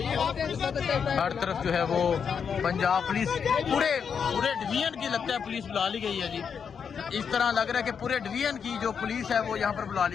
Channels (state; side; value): quieter; right; 6.8 dB